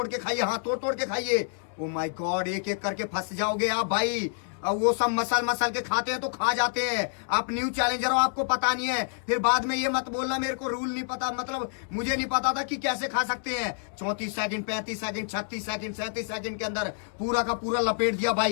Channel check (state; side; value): silent; right; 59 dB below the other